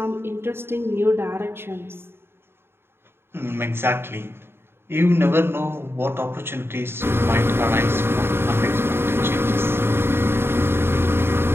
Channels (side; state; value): left; late; 0.11 ms